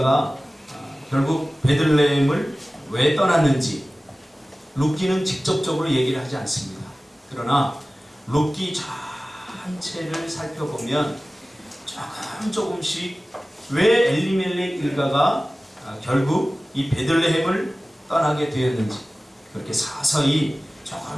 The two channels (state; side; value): normal; both; correlation 0.97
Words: 결국 베들레헴을 왜 떠났는지 룻기는 직접적으로 얘기를 하지 않습니다. 그러나 룻기 전체를 살펴보면 조금씩 왜 엘리멜렉 일가가 결국 이 베들레헴을 떠나게 되었는지 그렇게 서서히